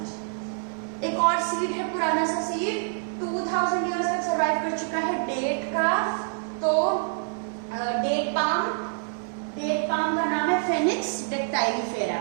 एक और सीड है पुराना सा सीड, 2000 ईयर्स तक सरवाइव कर चुका है, डेट का। तो डेट पाम का नाम है फेनिक्स डेक्टाइलिफेरा।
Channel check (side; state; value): left; silent; digital silence